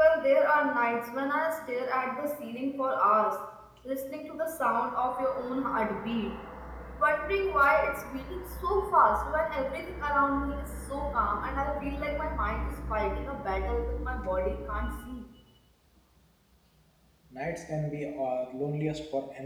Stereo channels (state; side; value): identical; both; correlation 1.00